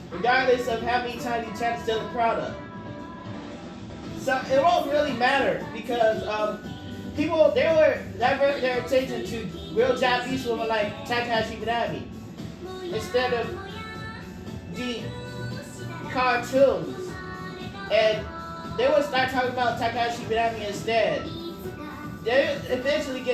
regardless of how many times you try to steal the product. So it won't really matter because people they were divert their attention to real Japanese women like Takahashi Minami instead of the cartoons, and they would start talking about Takahashi Minami instead. They eventually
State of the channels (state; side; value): identical; both; correlation 1.00